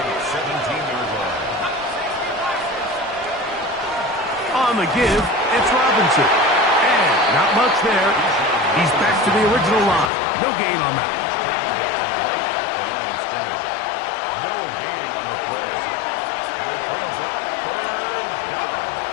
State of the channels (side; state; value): right; drops out; at 10.1 s